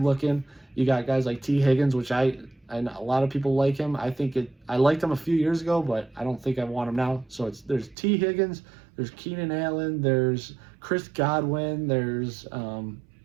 looking. You got guys like T. Higgins, which I and a lot of people like him. I liked him a few years ago, but I don't think I want him now. So there's T. Higgins, there's Keenan Allen, there's Chris Godwin, there's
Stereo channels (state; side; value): drops out; left; at 8.0 s